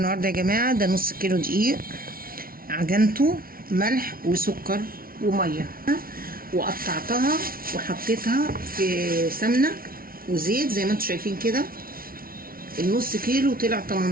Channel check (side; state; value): left; late; 0.43 ms